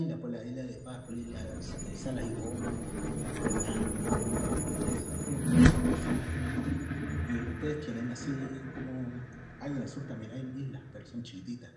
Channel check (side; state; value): both; identical; correlation 1.00